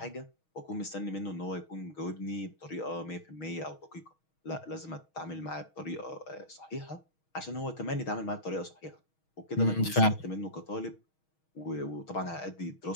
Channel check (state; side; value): late; right; 6.3 ms